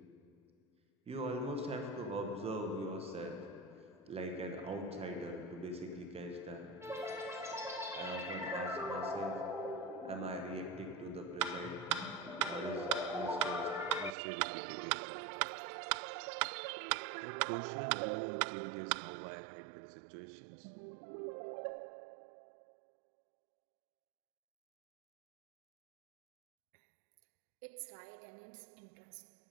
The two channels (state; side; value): drops out; left; at 14.2 s